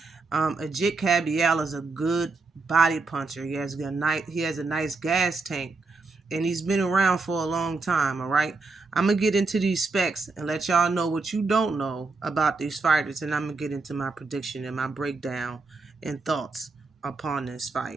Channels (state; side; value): quieter; left; 3.8 dB